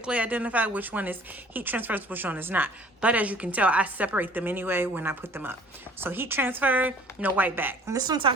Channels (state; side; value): normal; both; correlation 0.51